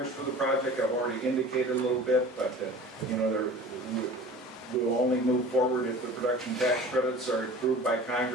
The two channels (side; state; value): both; normal; correlation 0.42